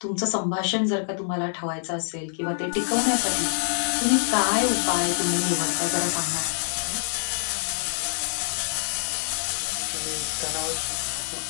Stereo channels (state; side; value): silent; right; 56 dB below the other